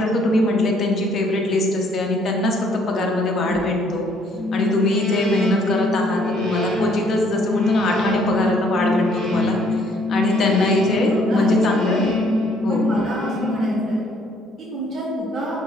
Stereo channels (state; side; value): normal; both; correlation 0.64